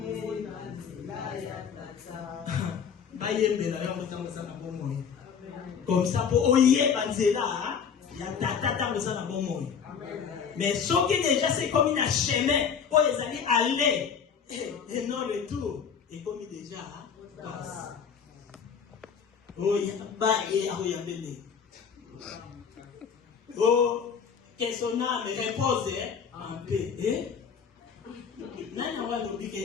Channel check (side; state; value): right; quieter; 6.8 dB